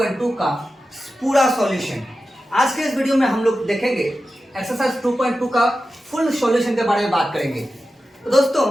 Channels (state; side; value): normal; both; correlation 0.92